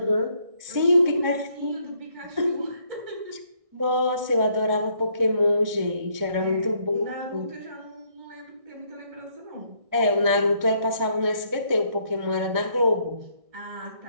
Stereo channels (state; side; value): late; left; 1.6 ms